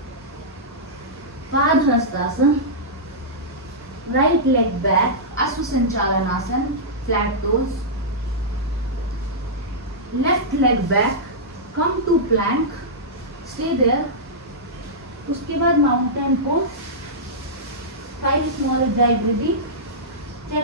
padahastasana, right leg back, ashwa sanchalanasana, flat toes, left leg back, come to plank, stay there. उसके बाद mountain pose, 5 small ujjayi breathing,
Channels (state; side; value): normal; both; correlation -0.13